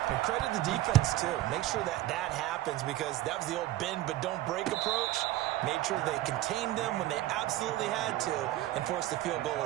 And credit the defense, too. Make sure that happens, because that was the old bend but don't break approach. Made sure they contained them when they absolutely had to and forced the field goal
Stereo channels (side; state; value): left; quieter; 15.7 dB